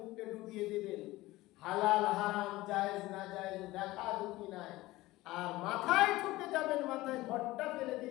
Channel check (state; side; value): quieter; right; 18.4 dB